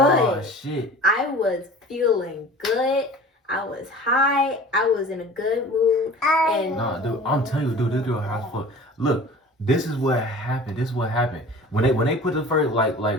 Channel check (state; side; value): normal; both; correlation 0.42